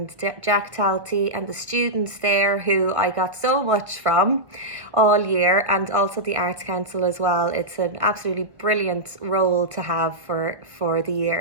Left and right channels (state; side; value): late; left; 1.6 ms